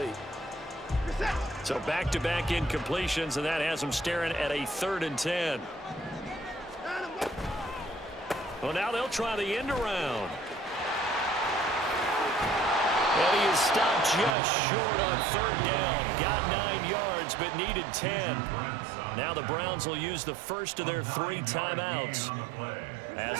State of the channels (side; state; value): left; drops out; at 14.4 s